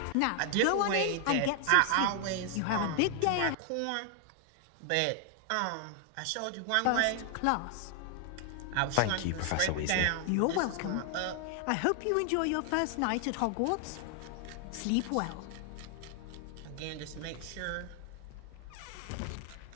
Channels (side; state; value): both; different; correlation 0.00